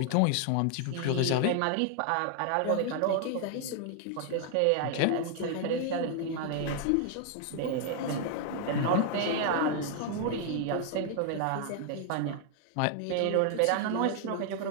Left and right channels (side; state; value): both; different; correlation 0.00